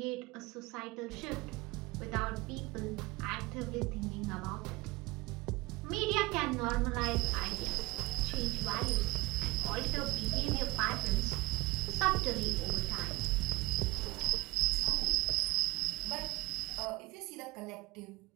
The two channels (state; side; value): quieter; left; 21.2 dB